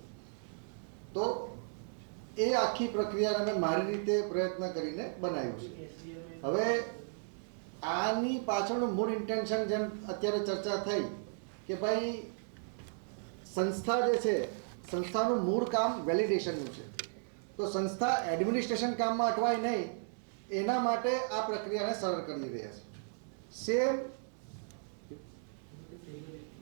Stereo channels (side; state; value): left; silent; digital silence